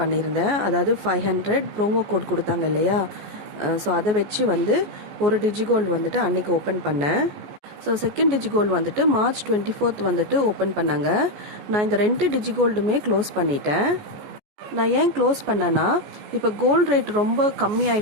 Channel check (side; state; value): left; late; 14 ms